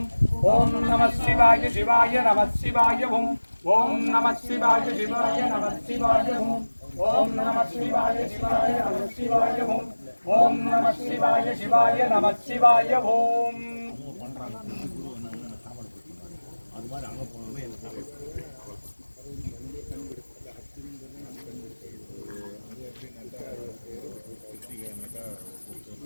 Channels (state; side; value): inverted; both; correlation -1.00